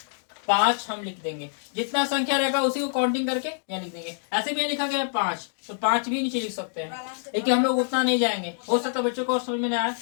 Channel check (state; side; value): silent; right; digital silence